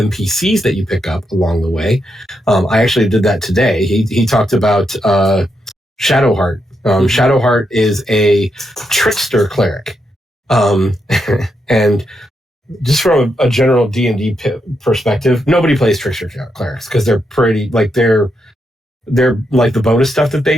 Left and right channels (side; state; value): both; normal; correlation 0.82